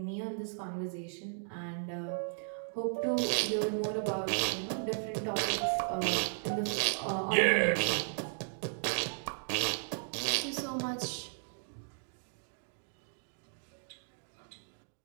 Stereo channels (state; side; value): silent; left; digital silence